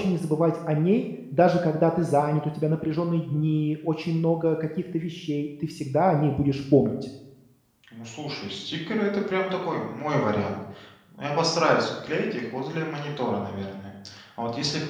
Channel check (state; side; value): identical; both; correlation 1.00